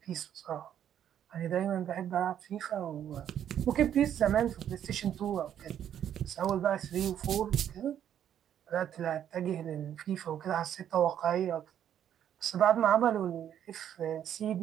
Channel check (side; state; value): left; quieter; 9.9 dB